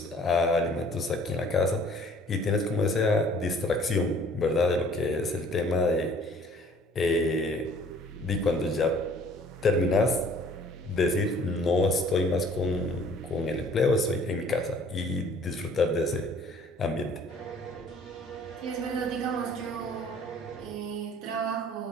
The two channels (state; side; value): normal; both; correlation 0.54